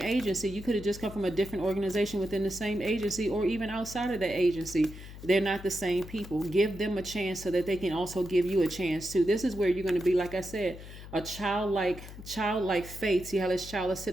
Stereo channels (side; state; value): left; noise; hum, 14 dB below the sound